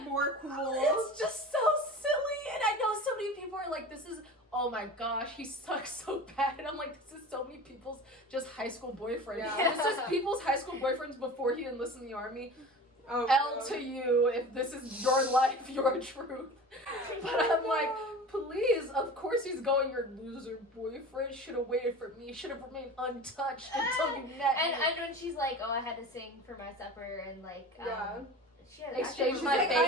cool. It's just so silly, and I know so many people are like, this is, oh my gosh, he sucks so bad. And I'm like, this is so many people's just high school boyfriends. Yeah. This is people's high school boyfriends before he enlisted in the army. Oh, L no. to you if this is your life, your truth. But I'm like, please, of course he's going, your loser boyfriend should have waited for me, should have remained untouched until you met me. And when she's like, oh, I had to sing for my supper and she had exchange my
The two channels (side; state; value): both; normal; correlation 0.35